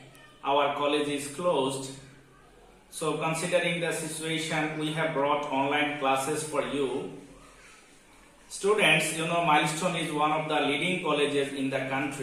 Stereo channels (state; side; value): identical; both; correlation 1.00